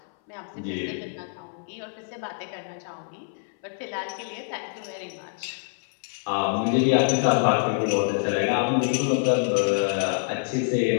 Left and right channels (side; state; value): right; silent; 61 dB below the other